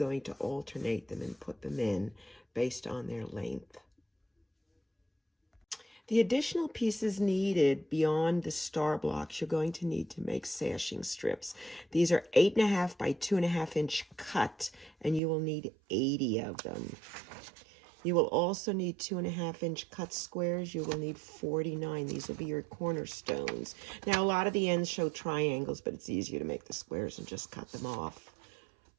to alternate them and put them in based on their length. The additional pieces needed beyond the star blocks, you're going to need to make sashing strips. These are 8.5 by 2.5-inch cut, and you will need 80 of them. You will also need 2.5-inch cut squares. You will need 49. These will be your cornerstones. Now, a lot of the ends show triangles, but it's easier to make the squares and just cut them off.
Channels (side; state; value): left; drops out; at 15.2 s